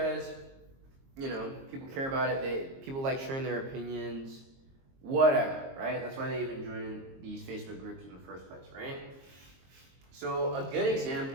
you know, people care about it. People like sharing their opinions, whatever, right? That's why they even join these Facebook groups in the first place, right? So a good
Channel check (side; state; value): left; late; 22 ms